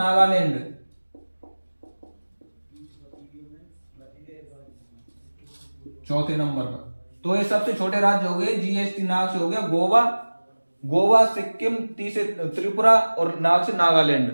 चौथे नंबर पर तो ये सबसे छोटे राज्य हो गए। जीएसटी नाग से हो गया गोवा, सिक्किम, टी से त्रिपुरा और नाग से नागालैंड।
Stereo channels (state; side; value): inverted; both; correlation -1.00